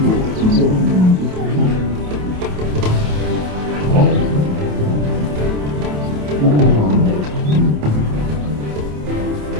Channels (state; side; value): late; left; 27 ms